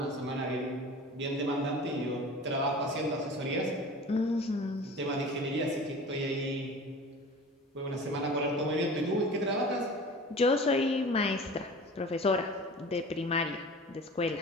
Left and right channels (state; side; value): normal; both; correlation 0.39